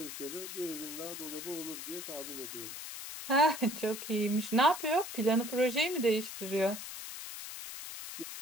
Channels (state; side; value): noise; left; hiss, 9 dB below the sound